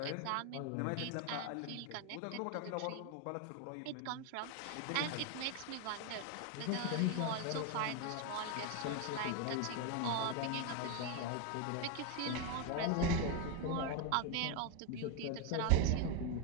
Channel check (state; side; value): different; both; correlation 0.01